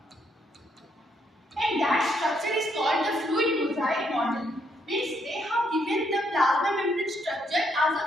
And that structure is called the fluid mosaic model. Means they have given the plasma membrane structure as a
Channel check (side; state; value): both; normal; correlation 0.74